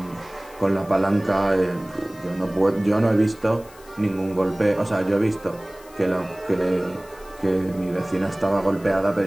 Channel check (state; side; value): noise; left; hiss, 24 dB below the sound